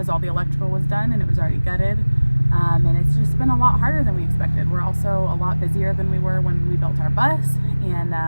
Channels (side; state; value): both; inverted; correlation -1.00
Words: all the electrical was done and it was already gutted. And it's just been a lot harder than we expected. We're also a lot busier than we were when we built our bus. And